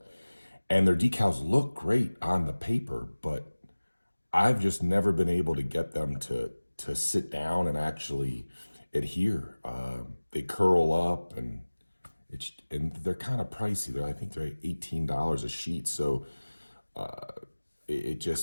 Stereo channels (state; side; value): inverted; both; correlation -1.00